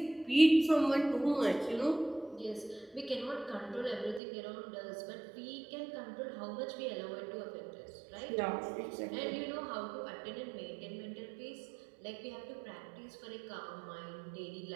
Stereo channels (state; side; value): drops out; left; at 4.2 s